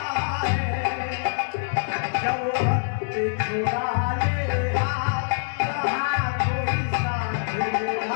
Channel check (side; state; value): right; silent; digital silence